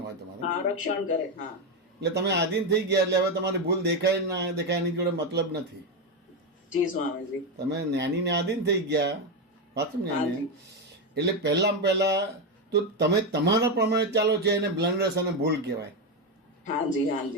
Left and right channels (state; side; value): normal; both; correlation 0.10